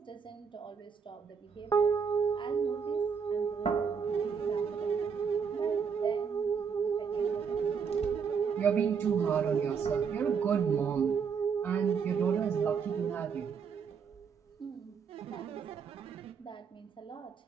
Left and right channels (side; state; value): left; quieter; 6.4 dB